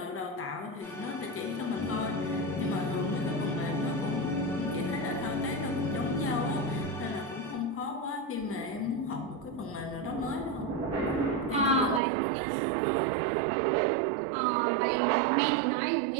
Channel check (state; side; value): drops out; left; at 12.0 s